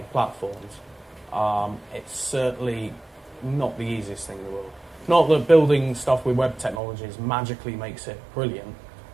platforms, it's certainly not the easiest thing in the world. Not that building stuff with web technologies magically makes it brilliant.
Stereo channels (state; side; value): drops out; left; at 6.8 s